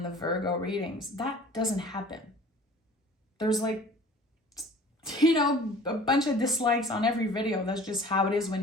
the Virgo readings. That doesn't happen. There's like, you know, a bunch of dislikes on every video. That's just how it is when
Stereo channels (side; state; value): both; normal; correlation 0.47